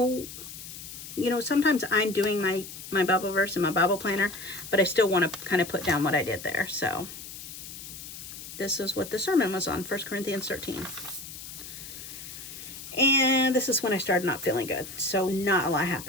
you know, sometimes I'm doing my Bible verse in my Bible planner, but I still want to kind of put down what I did there. So this is what the sermon was on, 1 Corinthians 13. And this is when I started not feeling good. So not a lot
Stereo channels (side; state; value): left; noise; hiss, 12 dB below the sound